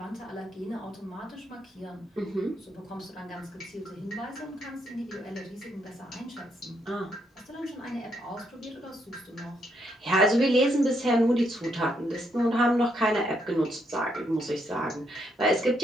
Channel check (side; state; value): both; normal; correlation 0.76